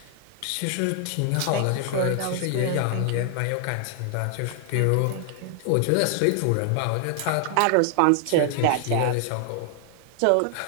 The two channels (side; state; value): both; different; correlation 0.00